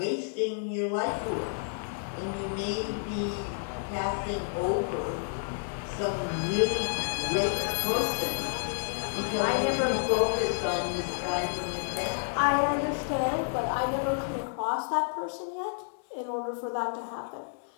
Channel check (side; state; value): right; silent; 58 dB below the other